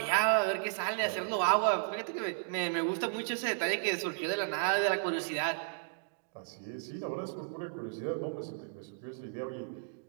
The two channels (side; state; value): left; silent; digital silence